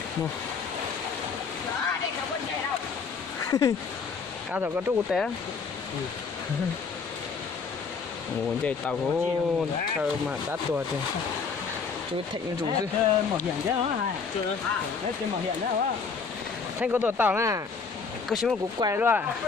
Cá thầu có trúc té. Ồ, chạy tàu có thơ mà đắt tuột thì chú Thịnh rủ chứ. Mỏ hiện chứ hả? Chưa. Đấy tên mỏ hiện đấy hả? Thanh có tuột tàu nè. Có xíu một cú quay luôn à.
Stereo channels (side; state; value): right; quieter; 5.2 dB